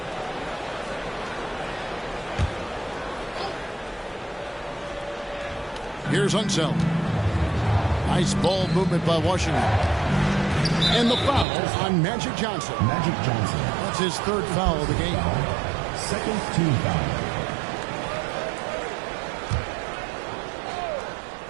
Here's Unseld. Nice ball movement by Washington. And the foul on Magic Johnson. Magic Johnson. That's his third foul of the game. Second team foul.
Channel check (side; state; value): left; drops out; at 11.5 s